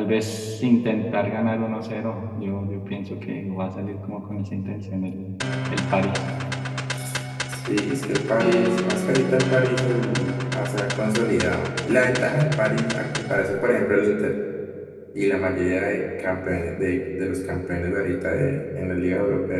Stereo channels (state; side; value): identical; both; correlation 1.00